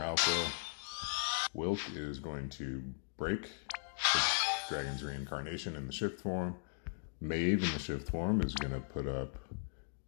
fill. Wylk is going to break the Dragon's Reincarnation in the shift form. Maeve in the shift form is going to put up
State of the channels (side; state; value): right; silent; digital silence